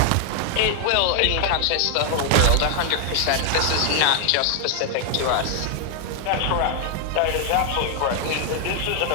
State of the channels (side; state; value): both; different; correlation 0.00